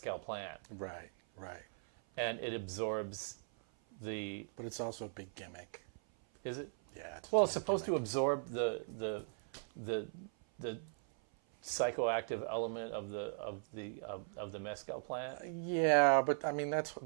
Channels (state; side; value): silent; left; 52 dB below the other